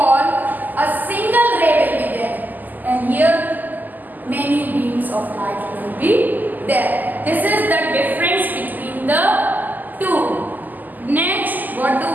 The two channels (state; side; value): late; left; 0.084 ms